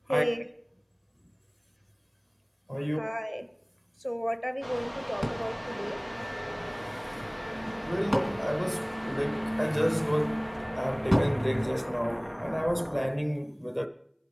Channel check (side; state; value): both; identical; correlation 1.00